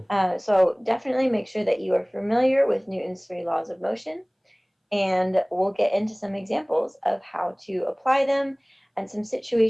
So definitely make sure that you are familiar with Newton's three laws of motion, and we'll get into some examples of how to apply them and some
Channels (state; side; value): identical; both; correlation 1.00